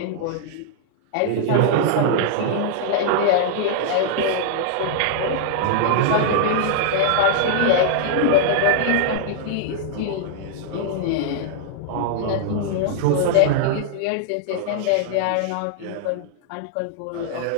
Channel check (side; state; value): both; different; correlation -0.01